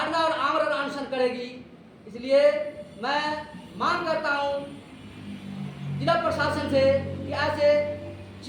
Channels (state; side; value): identical; both; correlation 1.00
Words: और आमरण अनशन करेगी। इसलिए मैं मांग करता हूं जिला प्रशासन से कि